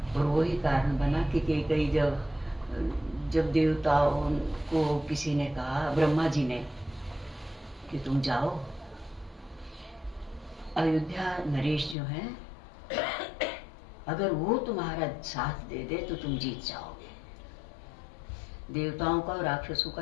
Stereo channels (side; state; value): right; drops out; at 12.0 s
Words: और वही कारण बना कि कई जब देवताओं को किसी ने कहा, ब्रह्मा जी ने, कि तुम जाओ अयोध्या नरेश जो है, अगर वो तुम्हारा साथ दे दे तो तुम जीत जाओगे। देवताओं का और राक्षसों